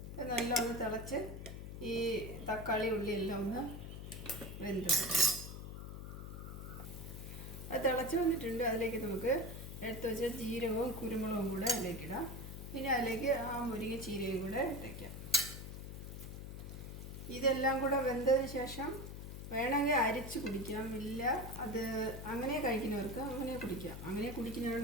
നല്ല ഒന്ന് തിളച്ച് ഈ തക്കാളി ഉള്ളിയെല്ലാം ഒന്ന് വെന്ത് അത് തിളച്ച് വന്നിട്ടുണ്ട്. അതിലേക്ക് നമുക്ക് എടുത്ത് വെച്ച ജീരകവും കുരുമുളകും കൂടെ അതിലേക്കിടാം. പിന്നെ അതിലേക്ക് ആ മുരിങ്ങ ചീരയും കൂടെ ഇട്ടേക്കാം. ഇതെല്ലാം കൂടെ വെന്തതിന് ശേഷം വേണമെങ്കിൽ അരിച്ച് കുടിക്കാം. ഇല്ല അത് അങ്ങനെ കഴിക്കുന്നവർക്ക് അങ്ങനെ കുടിക്കാം. അങ്ങനെ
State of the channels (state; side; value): noise; left; hum, 9 dB below the sound